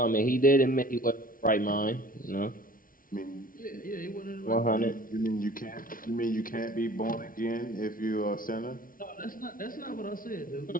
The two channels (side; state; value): right; late; 0.40 ms